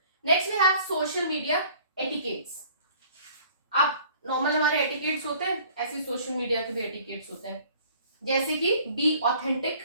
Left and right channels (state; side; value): inverted; both; correlation -0.52